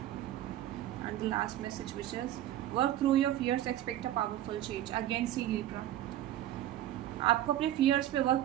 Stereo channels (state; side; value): quieter; left; 12.9 dB